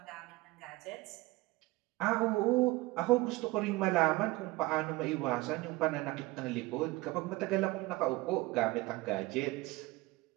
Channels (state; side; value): quieter; left; 21.1 dB